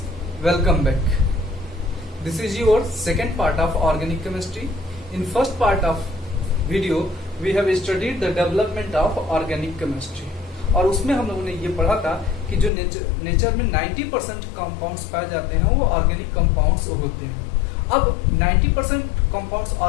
welcome back. This is your second part of organic chemistry. In first part of video we have studied the development of organic chemistry और उसमें हम लोगों ने ये पढ़ा था कि जो नेचर में 90% कंपाउंड्स पाए जाते हैं वो ऑर्गेनिक कंपाउंड्स होते हैं। अब 90% कंपाउंड्स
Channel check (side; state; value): right; drops out; at 12.7 s